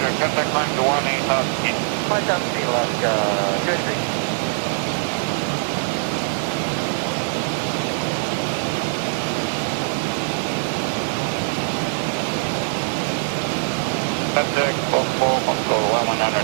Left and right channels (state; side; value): silent; left; 64 dB below the other